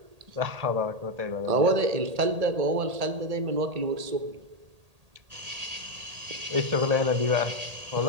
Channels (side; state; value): left; late; 1.8 ms